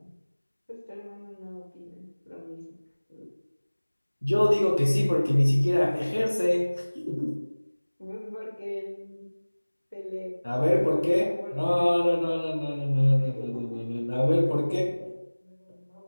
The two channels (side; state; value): both; inverted; correlation -1.00